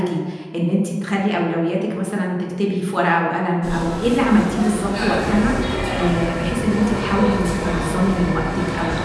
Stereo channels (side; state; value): both; identical; correlation 1.00